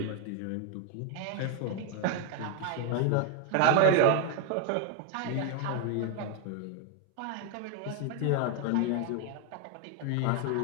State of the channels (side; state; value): both; different; correlation 0.01